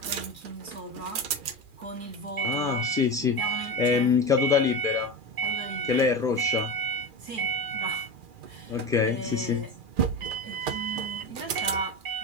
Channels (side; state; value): left; late; 2.4 ms